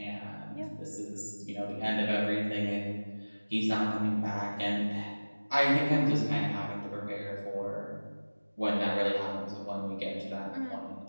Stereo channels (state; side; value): inverted; both; correlation -1.00